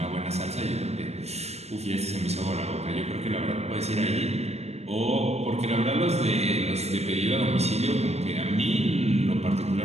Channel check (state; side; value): late; left; 0.31 ms